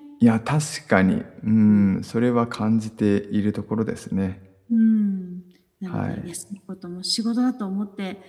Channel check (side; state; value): both; identical; correlation 1.00